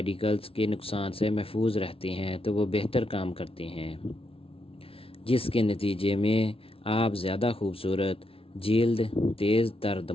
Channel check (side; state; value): right; late; 0.26 ms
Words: کے نقصان سے محفوظ رہتے ہیں تو وہ بہتر کام کرتے ہیں، جس کے نتیجے میں آپ زیادہ خوبصورت جلد، تیز تر